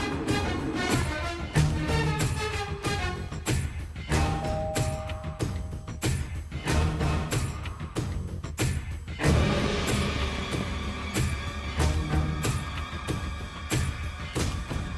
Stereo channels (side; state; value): both; identical; correlation 1.00